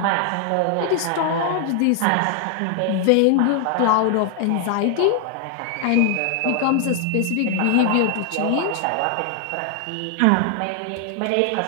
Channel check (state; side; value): different; both; correlation 0.00